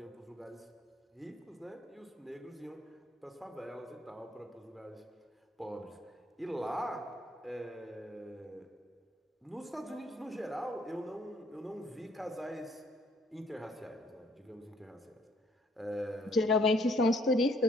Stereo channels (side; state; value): both; normal; correlation 0.65